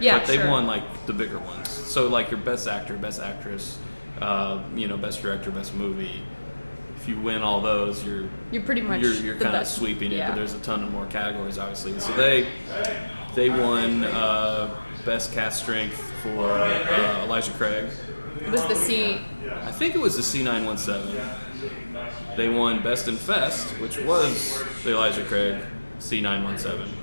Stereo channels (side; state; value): both; inverted; correlation -1.00